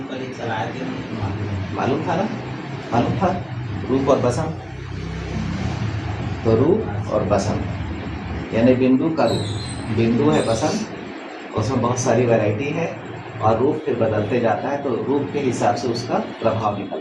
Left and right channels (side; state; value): both; identical; correlation 1.00